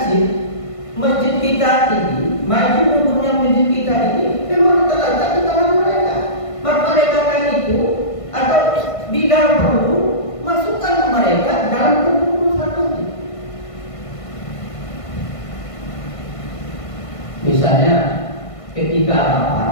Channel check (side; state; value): right; late; 1.5 ms